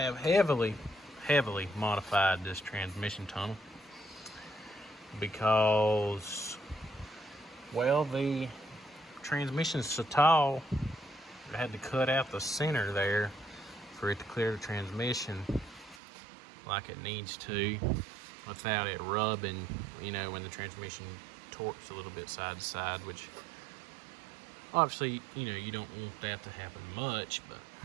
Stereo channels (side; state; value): left; drops out; at 16.0 s